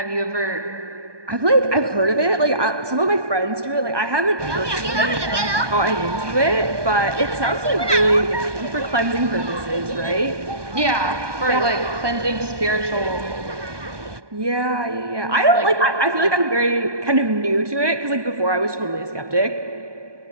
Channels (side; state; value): left; late; 1.2 ms